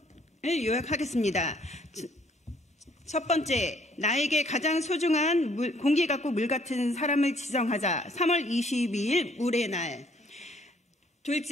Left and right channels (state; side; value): normal; both; correlation 0.63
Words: 요약하겠습니다. 첫 번째, 나에게 가장 소중한 공기 같고 물 같은 사람을 지정하자. 3월 22일 물의 날.